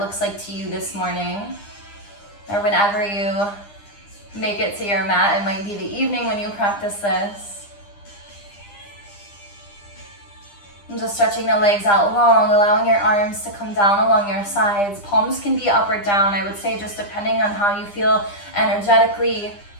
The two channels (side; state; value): right; late; 9.9 ms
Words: like to you this morning, or whenever you make it to your mat. It might be the evening when you practice this. And just stretching the legs out long, allowing your arms to come down along your sides. Palms can be up or down, I would say, just depending on how you feel energetically.